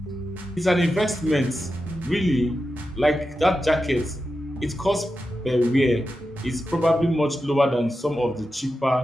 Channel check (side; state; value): both; normal; correlation 0.90